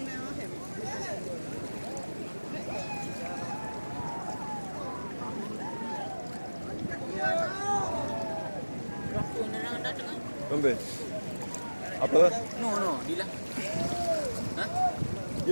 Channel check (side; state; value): both; inverted; correlation -1.00